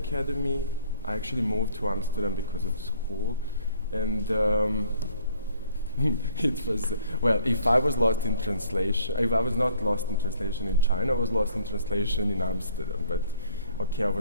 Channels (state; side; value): inverted; both; correlation -0.59